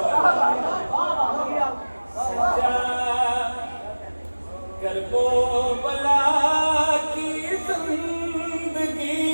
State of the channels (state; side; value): inverted; both; correlation -1.00